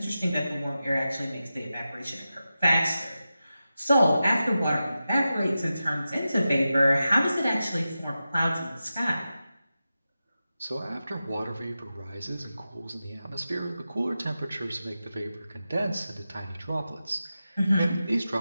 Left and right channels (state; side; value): inverted; both; correlation -0.93